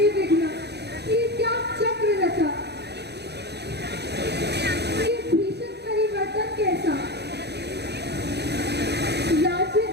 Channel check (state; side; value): late; left; 0.49 ms